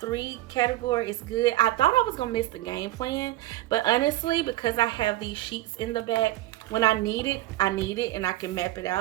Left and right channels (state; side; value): quieter; left; 16.1 dB